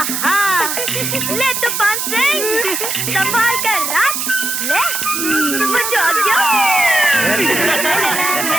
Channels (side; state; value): right; noise; hiss, 2 dB below the sound